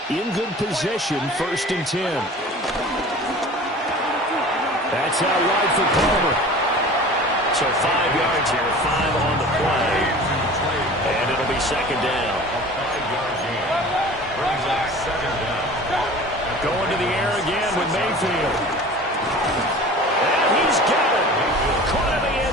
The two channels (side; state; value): both; normal; correlation 0.41